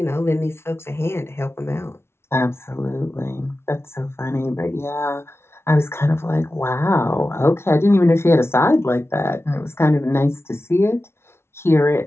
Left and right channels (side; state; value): right; late; 0.12 ms